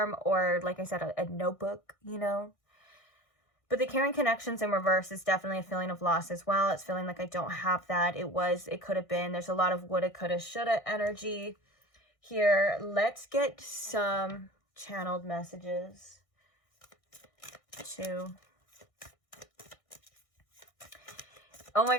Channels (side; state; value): right; late; 1.6 ms